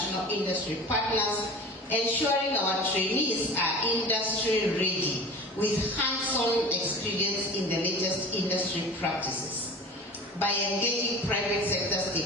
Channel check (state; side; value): normal; both; correlation 0.37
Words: industry partners, ensuring our trainees are industry ready with hands-on experience in the latest industry practices. By engaging private sector